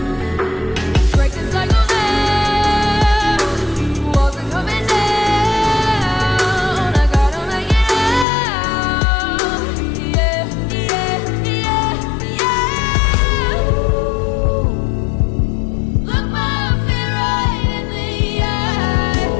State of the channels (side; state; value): right; drops out; at 8.2 s